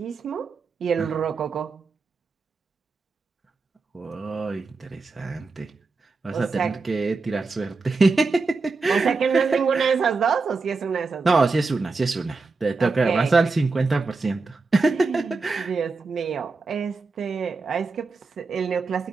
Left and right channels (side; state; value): left; quieter; 4.1 dB